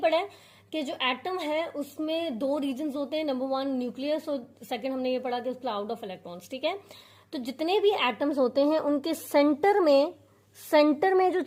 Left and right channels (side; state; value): both; identical; correlation 1.00